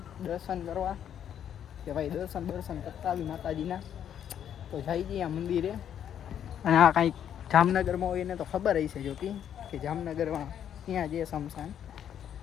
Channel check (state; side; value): quieter; right; 9.5 dB